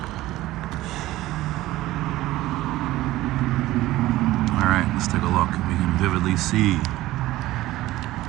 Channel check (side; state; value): left; quieter; 16.6 dB